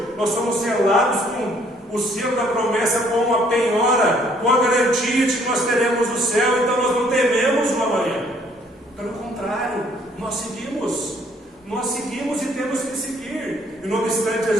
Nós somos selados com o selo da promessa, com uma penhora, com a garantia de que nós teremos o céu. Então nós não tememos o amanhã. Pelo contrário, nós seguimos e temos que seguir. E não obstante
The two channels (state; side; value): normal; both; correlation 0.63